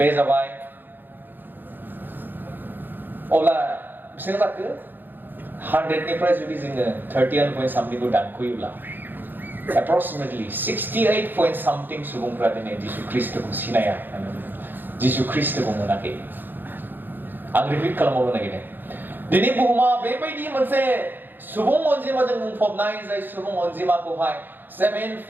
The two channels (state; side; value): late; left; 0.092 ms